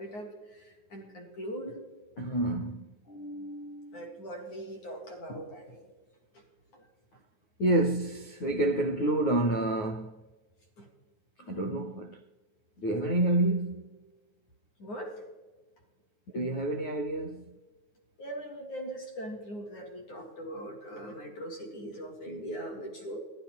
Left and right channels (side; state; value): right; late; 9.6 ms